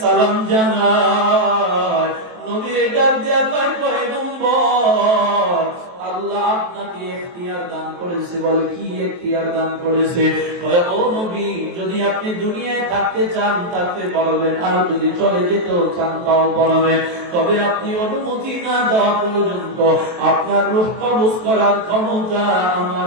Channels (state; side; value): late; left; 23 ms